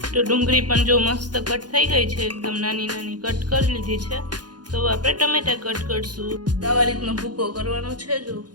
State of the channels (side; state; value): left; late; 0.70 ms